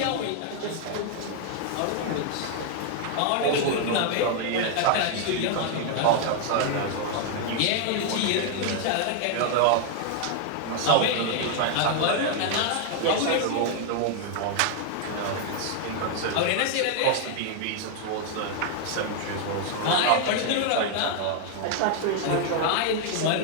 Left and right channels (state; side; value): different; both; correlation 0.00